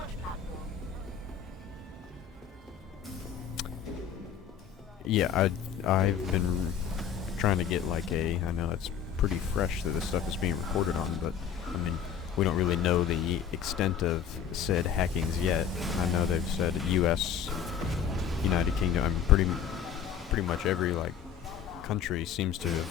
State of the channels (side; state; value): right; quieter; 8.2 dB